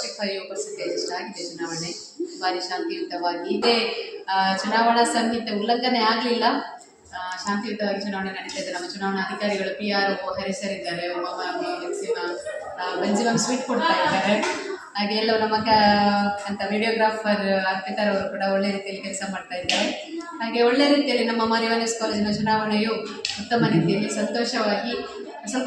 ಅಷ್ಟು ಆಗಿದೆ. ಚುನಾವಣೆ ಭಾರಿ ಶಾಂತಿಯುತವಾಗಿ ಇದೆ. ಚುನಾವಣಾ ಸಂಹಿತೆ ಉಲ್ಲಂಘನೆ ಆಗಲಿಲ್ಲ. ಶಾಂತಿಯುತವಾಗಿ ಚುನಾವಣೆ ನಡೀತಾ ಇದೆ. ನಮ್ಮ ಚುನಾವಣಾ ಅಧಿಕಾರಿಗಳು PRO ಹರಿಸರಿದ್ದಾರೆ. ಬೆಂಜಿಮಮ್ ಸ್ವೀಟ್ ಕೊಡ್ತಾ ಇದ್ದಾರೆ. ಹಾಗೆ ಎಲ್ಲವೂ ನಮ್ಮ ಅಂತ ವಿಡಿಯೋಗ್ರಾಫರ್ ಅರ್ಪಿತಾರ್ ಅವರು ಕೂಡ ಒಳ್ಳೆ ರೀತಿಯಲ್ಲಿ ಕೆಲಸ ಮಾಡ್ತಾ ಇದ್ದಾರೆ. ಹಾಗೆ ಒಳ್ಳೆ ರೀತಿಯಲ್ಲಿ ನಮ್ಮ ಮಾರಿವಾನಸ್ ಕಾಲೇಜಿನ ಚುನಾವಣೆಯು ಉತ್ತಮ ರೀತಿಯಲ್ಲಿ ಸಂತೋಷವಾಗಿ, ಸ್ವಲ್ಪ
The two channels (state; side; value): identical; both; correlation 1.00